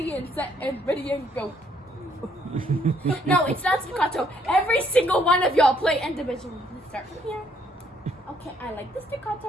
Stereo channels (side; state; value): both; normal; correlation 0.68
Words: and set and ready and go. No, it's not staccato. Every single one of y'all play individually. Let's start from here. Okay, I like the